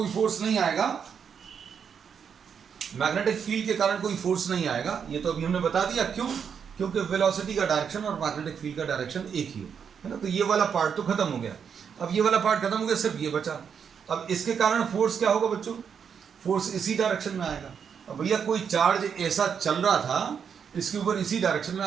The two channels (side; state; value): left; quieter; 7.1 dB